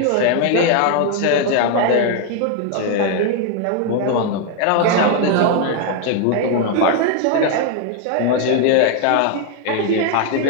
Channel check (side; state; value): both; different; correlation 0.00